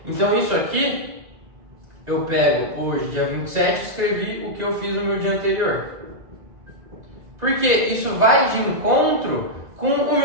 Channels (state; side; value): late; left; 2.0 ms